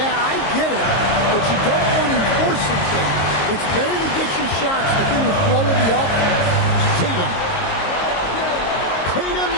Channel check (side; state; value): right; late; 22 ms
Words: I get it, but you don't want to enforce something. It's better to get your shots within the flow of the offense. Tatum. Tatum